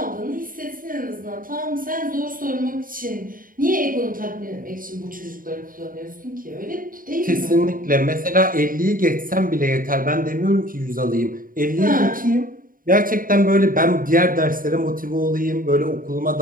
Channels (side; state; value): left; late; 0.40 ms